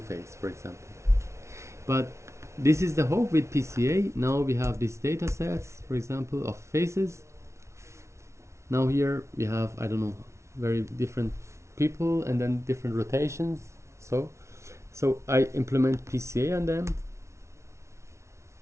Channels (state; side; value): late; left; 0.13 ms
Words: face, for example. But this is the hope with PCA. Now we have these data sets, for example, of faces. Now here we have, I don't know, very different people and then different rotations. So I implement PCA on them.